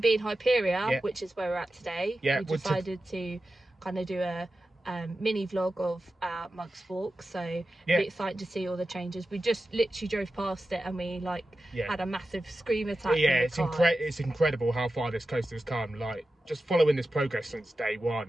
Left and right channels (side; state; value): both; normal; correlation 0.93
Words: Hyperia, which is where we're at today. Yeah, we decided to kind of do a mini vlog of our Mugs Walk, so be excited to see all the changes. We just literally drove past it and we had a massive scream attack. Yeah, it's incredible how far this coaster's come. Like, just following this progress since day